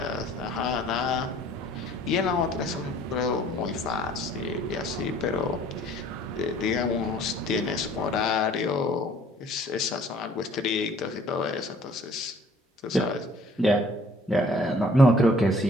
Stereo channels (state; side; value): normal; both; correlation 0.55